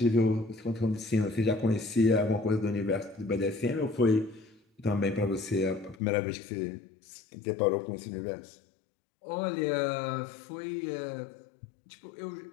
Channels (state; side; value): drops out; right; at 6.0 s